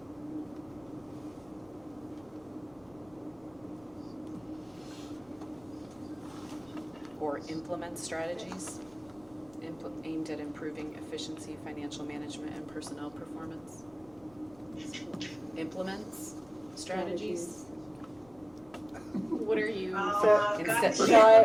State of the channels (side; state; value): left; noise; rumble, 28 dB below the sound